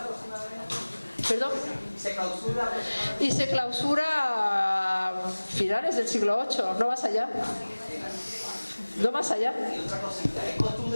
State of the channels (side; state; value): both; inverted; correlation -1.00